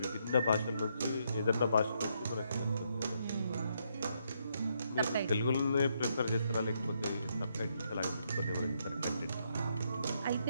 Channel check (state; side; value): inverted; both; correlation -0.76